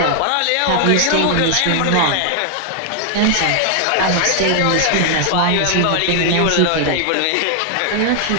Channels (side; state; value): both; different; correlation 0.00